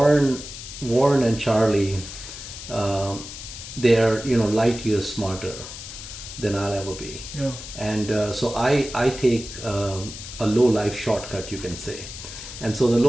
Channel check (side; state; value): left; noise; hiss, 11 dB below the sound